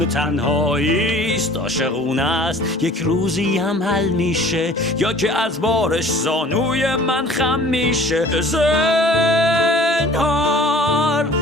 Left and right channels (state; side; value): normal; both; correlation 0.49